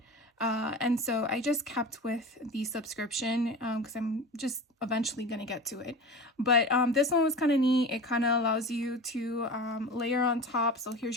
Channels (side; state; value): both; normal; correlation 0.32